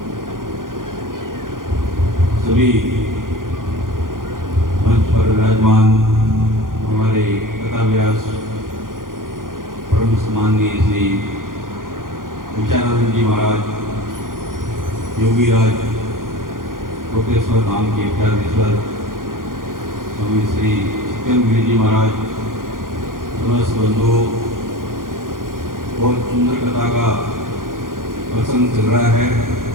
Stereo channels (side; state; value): left; late; 0.90 ms